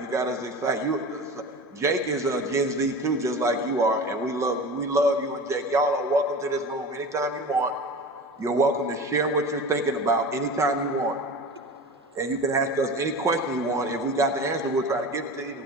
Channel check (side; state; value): both; normal; correlation 0.33